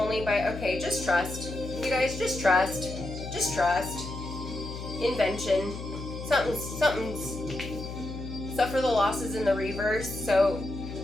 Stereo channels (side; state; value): left; noise; hum, 9 dB below the sound